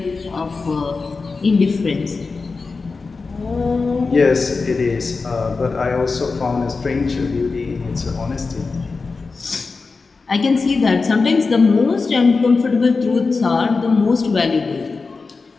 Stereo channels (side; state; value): right; quieter; 4.3 dB